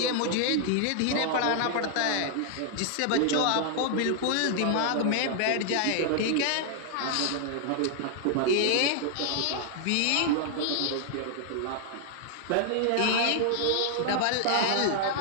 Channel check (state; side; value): different; both; correlation 0.00